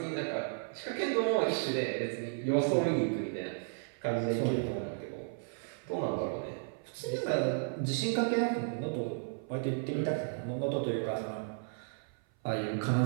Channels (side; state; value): left; silent; 55 dB below the other